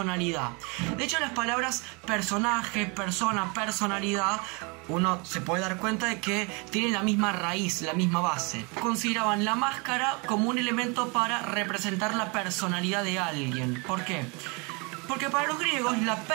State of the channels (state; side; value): quieter; left; 30.9 dB